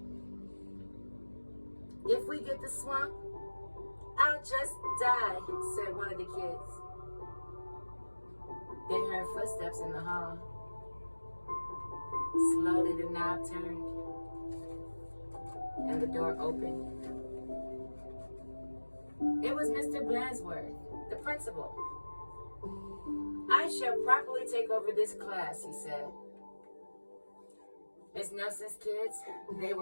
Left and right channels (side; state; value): both; inverted; correlation -1.00